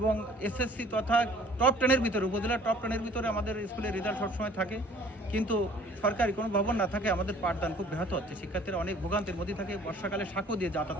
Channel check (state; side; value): normal; both; correlation 0.53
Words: এসএসসি তথা টপ 10-এর ভিতরে, উপজেলার টপ 10-এর ভিতরে আমাদের স্কুলের রেজাল্ট সবসময় থাকে। কিন্তু সরকারি কোনো ভবন না থাকে আমাদের পাঠদান খুব ব্যাহত হচ্ছে। শিক্ষার্থীরা অনেক ভোগান্তির মধ্যে থাকে। বর্ষাকালে সাঁকো দিয়ে যাতায়াত